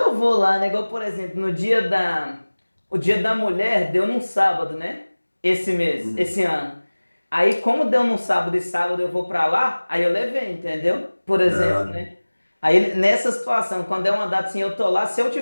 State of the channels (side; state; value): both; inverted; correlation -1.00